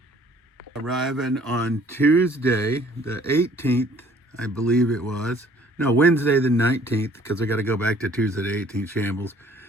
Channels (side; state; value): both; normal; correlation 0.57